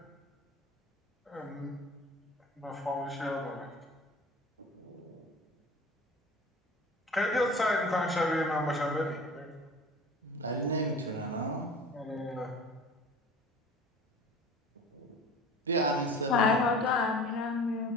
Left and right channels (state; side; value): normal; both; correlation 0.41